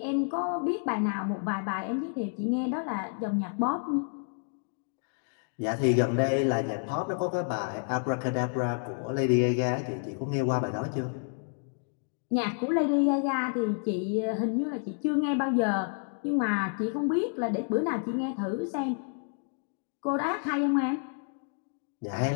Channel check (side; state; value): right; silent; 58 dB below the other